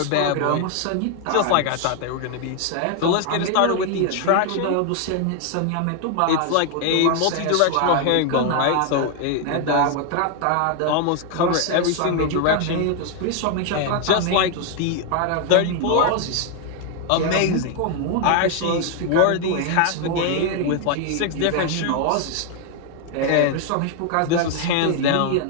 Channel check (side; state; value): both; different; correlation 0.01